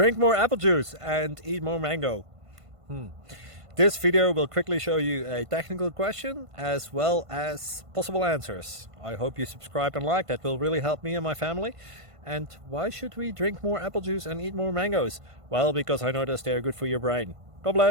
more apple juice and eat more mango. This video will quickly show you a technical question as well as possible answers. I hope you subscribe and like, that will really help me and my family. And why should we drink more apple juice and eat more mangoes? Well, because I noticed they're good for your brain. God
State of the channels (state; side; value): late; left; 1.5 ms